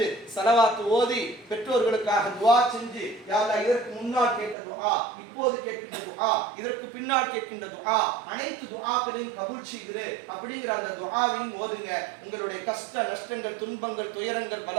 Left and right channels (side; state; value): left; drops out; at 4.5 s